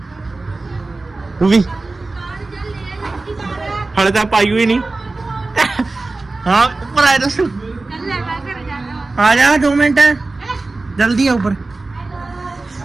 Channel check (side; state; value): left; quieter; 3.3 dB